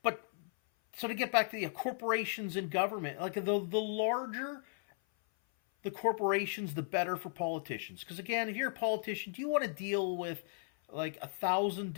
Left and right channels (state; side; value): silent; right; 54 dB below the other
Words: so to get back to the corporations and government, like the larger the corporations, the better for politicians. Because again, if you're a politician, do you want to deal with like 1,000